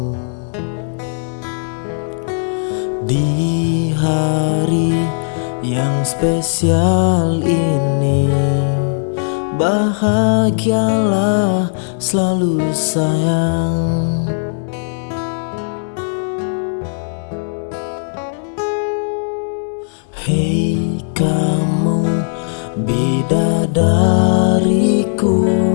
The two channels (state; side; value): silent; right; digital silence